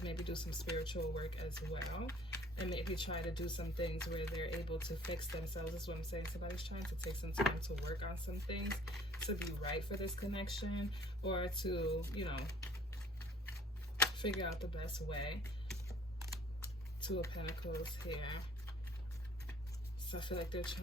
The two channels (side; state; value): both; normal; correlation 0.55